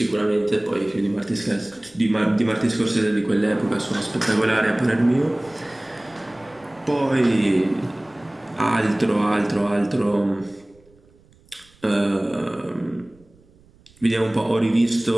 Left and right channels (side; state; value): right; noise; rumble, 30 dB below the sound